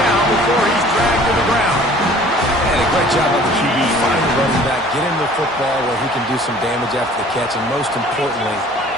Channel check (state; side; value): normal; both; correlation 0.50